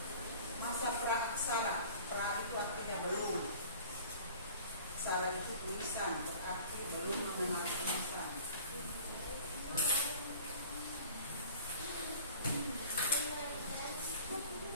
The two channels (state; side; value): inverted; both; correlation -0.46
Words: Masa praaksara, pra itu artinya belum. Aksara itu tulisan, berarti belum mengenal tulisan.